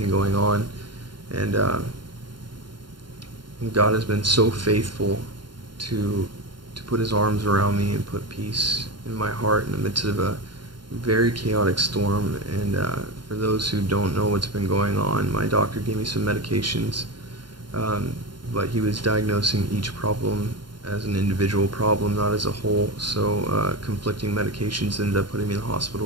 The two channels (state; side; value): late; left; 0.72 ms